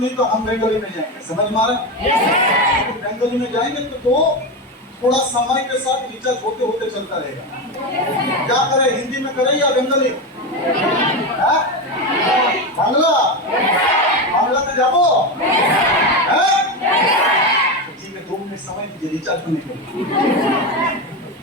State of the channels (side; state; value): both; normal; correlation 0.16